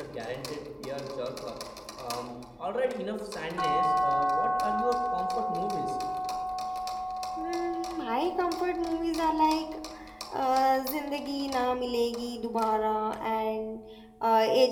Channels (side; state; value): both; identical; correlation 1.00